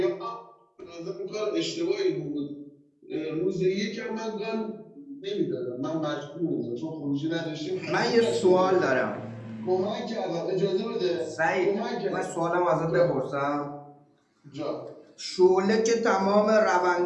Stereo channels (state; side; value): identical; both; correlation 1.00